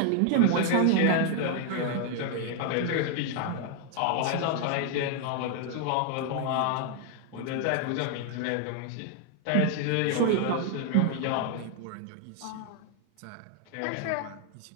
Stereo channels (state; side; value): different; both; correlation 0.00